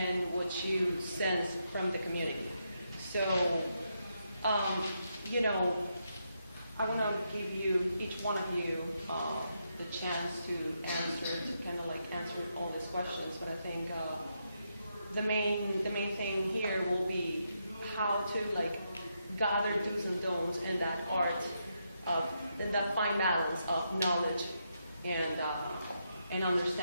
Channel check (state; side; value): inverted; both; correlation -0.81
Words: what you sense from the community. So, I want to give you, each one of you, the chance to answer all these questions. But I think the main thing here will be how to gather do's and don'ts in that art in that fine balance of knowledge and